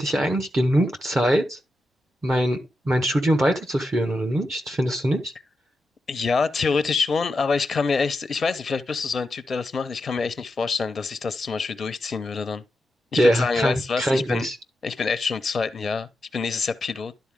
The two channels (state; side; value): normal; both; correlation 0.88